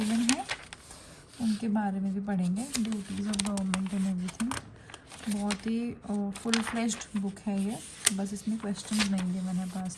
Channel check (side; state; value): both; identical; correlation 1.00